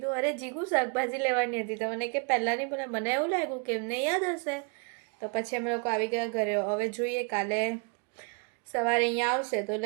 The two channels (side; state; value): left; quieter; 36.1 dB